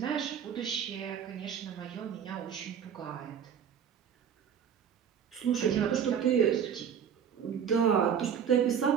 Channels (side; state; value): left; quieter; 8.1 dB